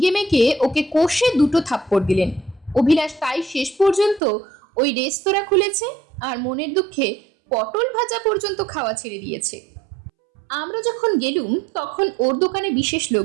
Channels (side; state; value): left; drops out; at 4.2 s